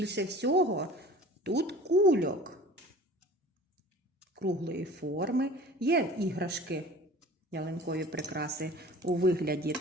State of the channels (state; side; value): normal; both; correlation 0.43